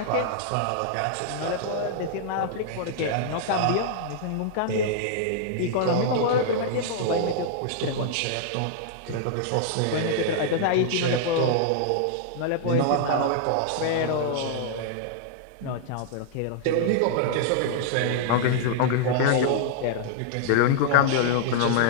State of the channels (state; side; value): different; both; correlation -0.01